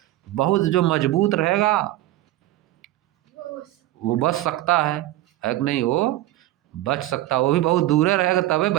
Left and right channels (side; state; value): left; quieter; 15.7 dB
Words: बहुत जो मजबूत रहेगा वो बच सकता है कि नहीं? वो बच सकता है, वो भी बहुत दूर रहेगा तबे